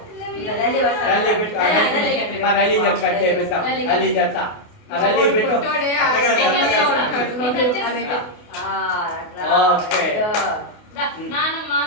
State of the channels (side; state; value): right; late; 28 ms